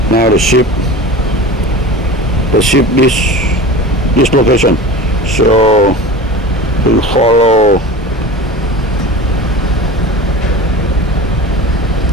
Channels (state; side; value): normal; both; correlation 0.34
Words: now the ship this location. So we follow